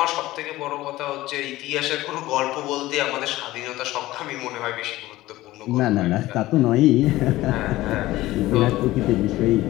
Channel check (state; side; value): quieter; right; 17.1 dB